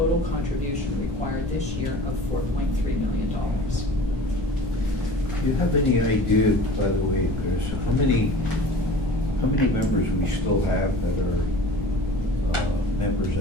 contribution required this year of $4.3 million. Do you have any idea, by the way, Chris, how many members we still have that are members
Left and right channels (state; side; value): normal; both; correlation 0.42